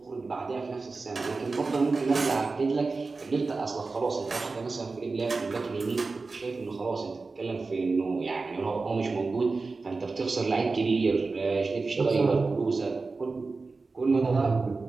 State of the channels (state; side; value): quieter; left; 4.0 dB